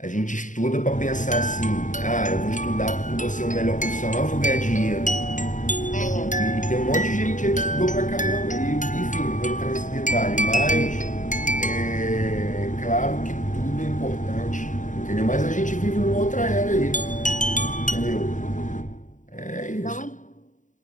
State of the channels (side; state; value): right; late; 0.37 ms